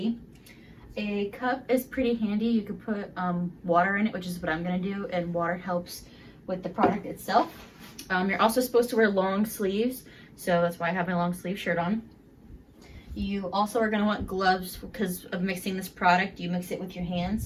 A cup is pretty handy. You could put water in it, which is what I'm going to do, and water helps with the product itself. You're also supposed to wear long sleeves, so that's why I have my long sleeve shirt on. You also are going to want gloves because of mixing this product. You mix it with your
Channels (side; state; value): both; identical; correlation 1.00